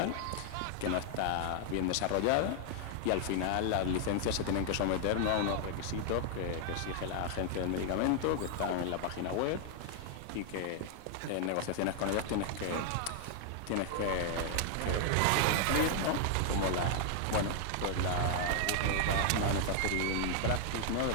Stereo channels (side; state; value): both; different; correlation 0.00